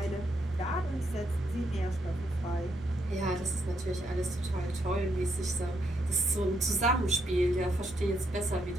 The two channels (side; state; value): both; normal; correlation 0.77